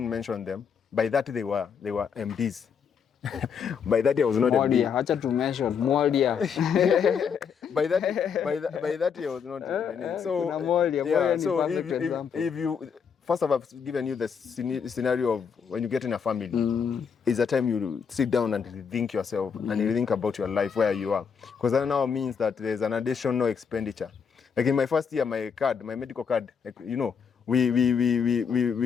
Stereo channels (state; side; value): quieter; right; 6.7 dB